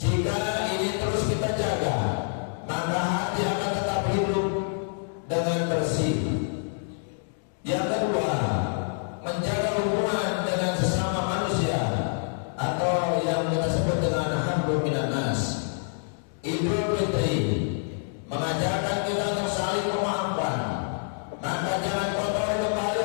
Jika ini terus kita jaga, maka hati akan tetap hidup dengan bersih. Yang kedua, menjaga hubungan dengan sesama manusia atau yang kita sebut dengan hablum minan nas. Idul Fitri mengajarkan kita untuk saling memaafkan. Maka jangan kotori kembali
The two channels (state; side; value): silent; right; digital silence